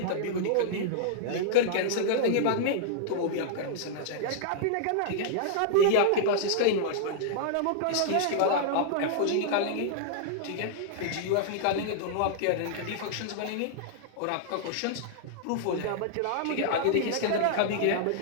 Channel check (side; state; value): both; different; correlation -0.01